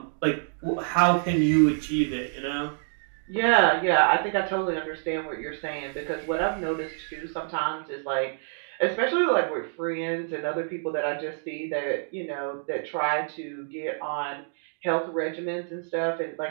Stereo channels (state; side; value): silent; left; digital silence